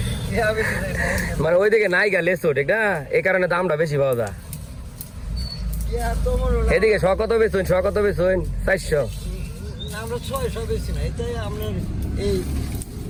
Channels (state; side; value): identical; both; correlation 1.00